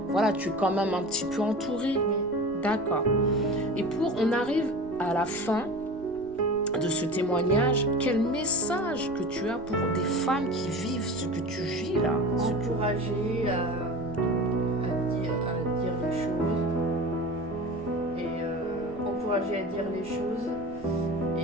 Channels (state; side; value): noise; right; rumble, 21 dB below the sound